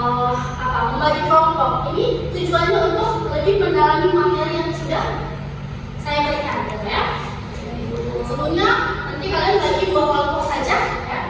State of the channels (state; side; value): identical; both; correlation 1.00